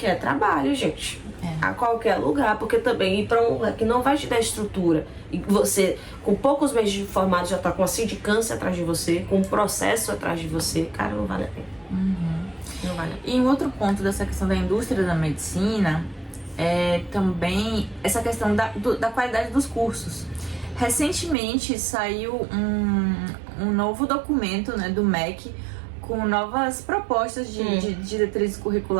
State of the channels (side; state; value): left; drops out; at 21.4 s